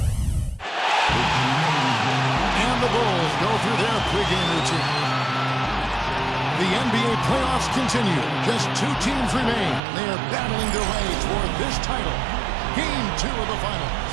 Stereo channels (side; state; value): left; drops out; at 9.8 s